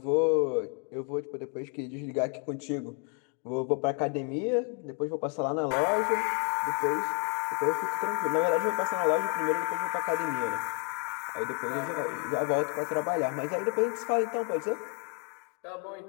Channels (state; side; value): quieter; right; 37.2 dB